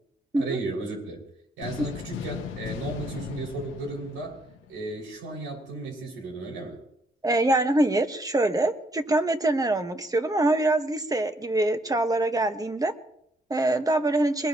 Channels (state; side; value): normal; both; correlation 0.70